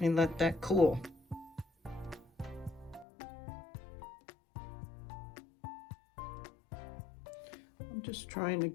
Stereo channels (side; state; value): right; drops out; at 3.1 s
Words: me let that cool. I'm just trying to